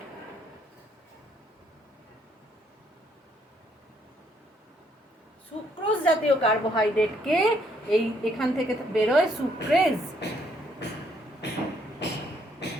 সুক্রোজ জাতীয় কার্বোহাইড্রেটকে এই এখান থেকে বেরোয় সুক্রেজ।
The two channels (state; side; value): normal; both; correlation 0.69